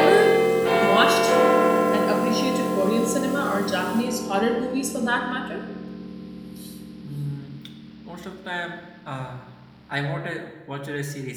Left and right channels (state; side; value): identical; both; correlation 1.00